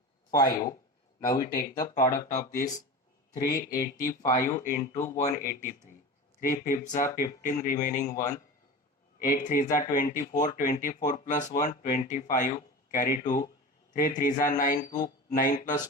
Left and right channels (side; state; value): both; normal; correlation 0.30